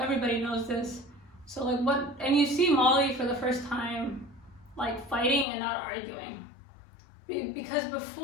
knows this. So like and you see Molly for the first time like fighting and not arguing. Because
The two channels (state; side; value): drops out; right; at 5.5 s